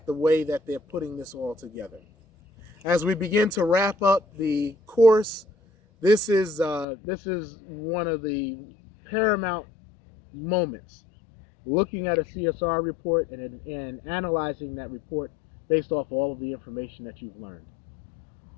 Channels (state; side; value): drops out; right; at 6.9 s